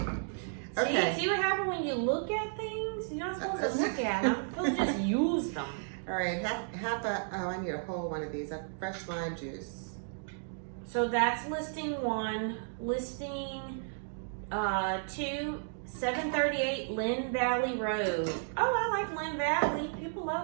Okay. See what happens when you look at things? You're not supposed to look at them. You're supposed to just use them. All right, I need a whole one of these. A fresh lime juice. So that's listing 1. Listing 2, 738 Lynn Valley Road. Oh, I like Lynn Valley. People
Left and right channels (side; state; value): left; silent; digital silence